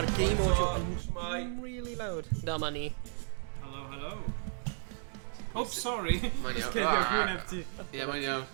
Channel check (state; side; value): silent; left; digital silence